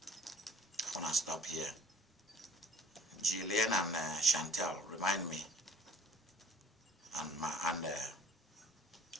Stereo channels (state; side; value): normal; both; correlation 0.52